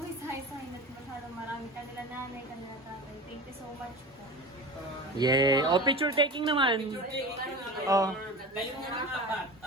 isa-isahin at masyadong marami. Kanila nanay, kanila tatay. Thank you so much po. Yeah. O, picture taking naman. Oh. Kayo muna apat.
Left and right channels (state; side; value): normal; both; correlation 0.32